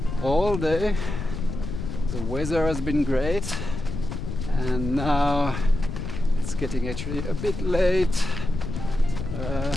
all day, the weather has been great, and now it's getting actually a bit late,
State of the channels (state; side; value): noise; left; rumble, 6 dB below the sound